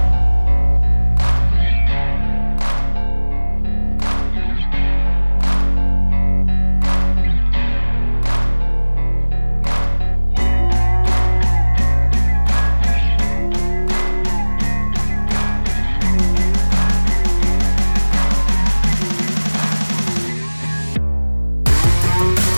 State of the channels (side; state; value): both; inverted; correlation -1.00